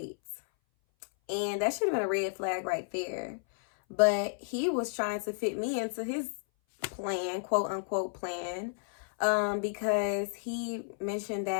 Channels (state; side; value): silent; right; 57 dB below the other